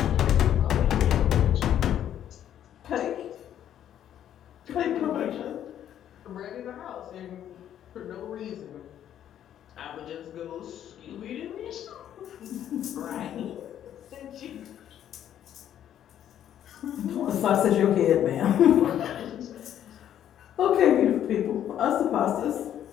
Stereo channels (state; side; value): quieter; right; 10.5 dB